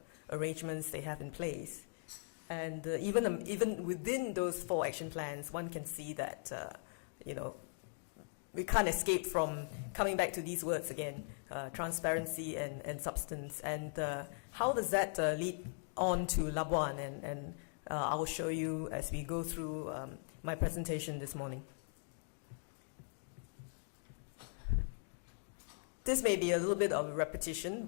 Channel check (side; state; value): right; silent; digital silence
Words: arrangements they have in place. And even within those 4 action plans, one can see that we can't escape from coming back to these words again: transparency and substance. And how does that lead on to Labuan? And I will show you as we go through my presentation this morning. This may be a little bit of a repetition,